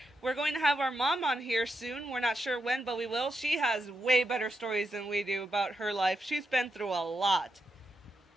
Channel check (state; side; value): normal; both; correlation 0.85